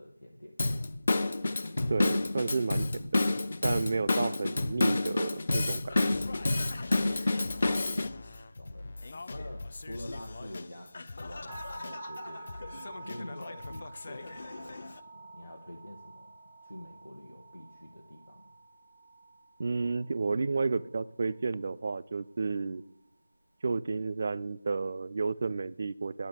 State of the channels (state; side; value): inverted; both; correlation -0.93